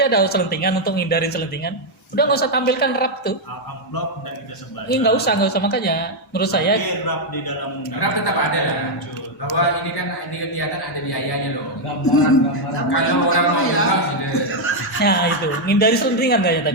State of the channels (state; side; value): normal; both; correlation 0.00